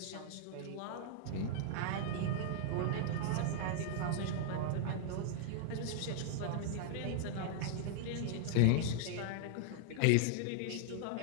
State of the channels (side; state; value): both; different; correlation -0.01